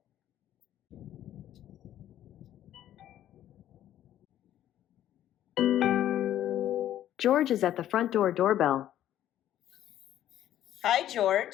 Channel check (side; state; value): right; quieter; 12.0 dB